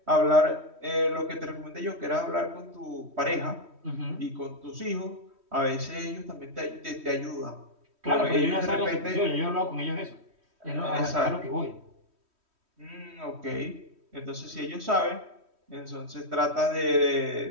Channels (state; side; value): late; left; 3.1 ms